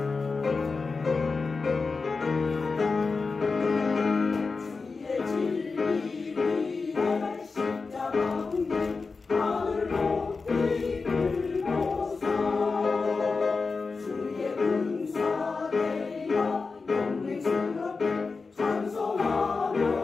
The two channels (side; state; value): right; quieter; 4.4 dB